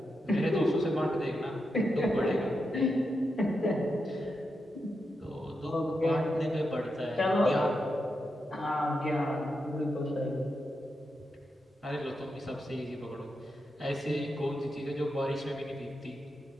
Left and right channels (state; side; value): normal; both; correlation 0.86